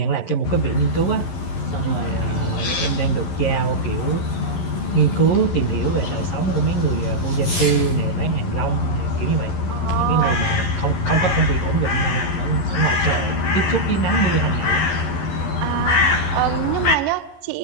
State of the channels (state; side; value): late; right; 11 ms